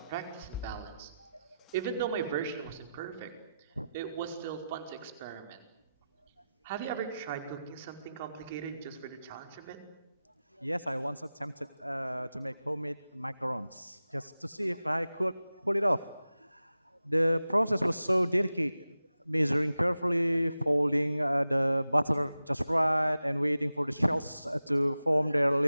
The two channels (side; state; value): both; inverted; correlation -0.93